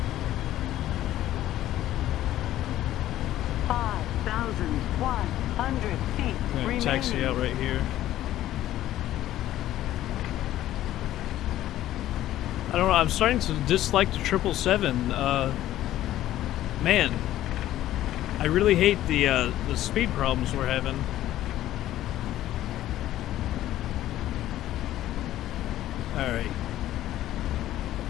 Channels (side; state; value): right; quieter; 13.6 dB